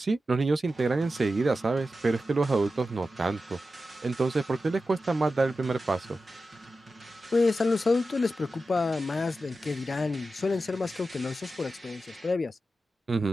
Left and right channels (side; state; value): both; normal; correlation 0.92